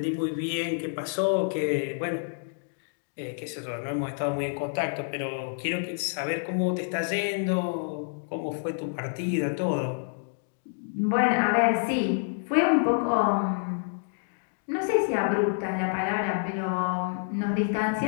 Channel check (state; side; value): silent; right; digital silence